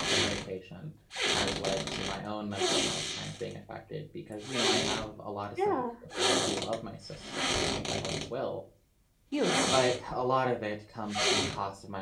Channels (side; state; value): both; identical; correlation 1.00